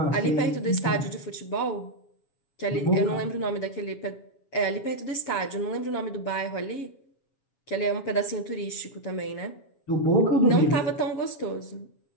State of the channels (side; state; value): right; late; 7.3 ms